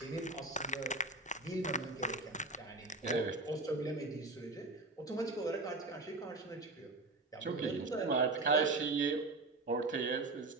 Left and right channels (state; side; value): quieter; left; 3.1 dB